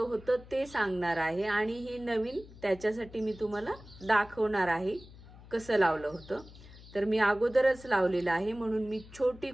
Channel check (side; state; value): left; noise; hum, 19 dB below the sound